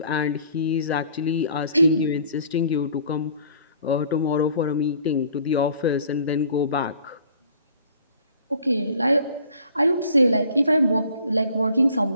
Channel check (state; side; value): inverted; both; correlation -0.54